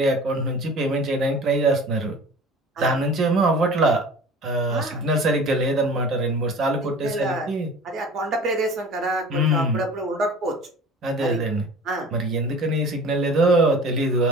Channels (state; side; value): normal; both; correlation 0.42